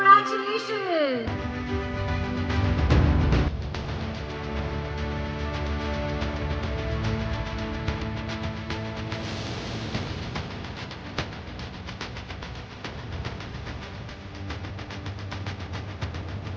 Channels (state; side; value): identical; both; correlation 1.00